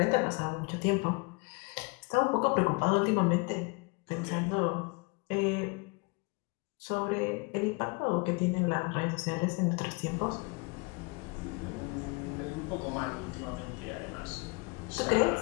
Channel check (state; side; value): quieter; right; 28.8 dB